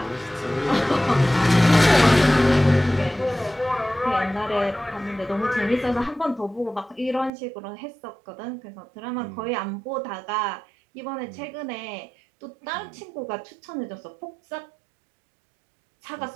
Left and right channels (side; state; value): left; drops out; at 7.3 s